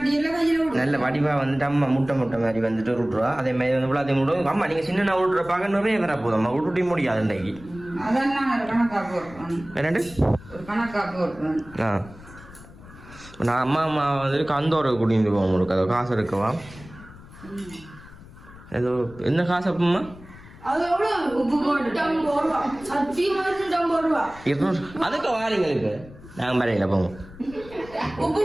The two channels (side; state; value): left; noise; rumble, 19 dB below the sound